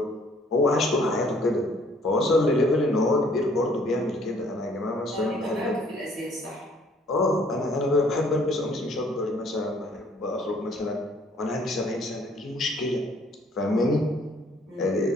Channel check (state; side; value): normal; both; correlation 0.61